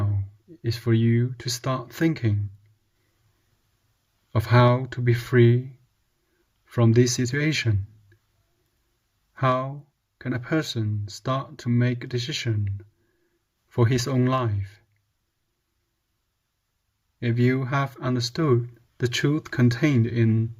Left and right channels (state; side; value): identical; both; correlation 1.00